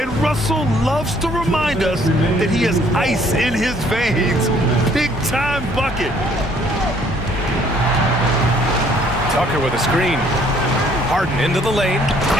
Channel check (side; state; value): both; normal; correlation 0.61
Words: Russell loves to remind us that he has ice in his veins. Big-time bucket. Tucker with a screen. Harden into the lane.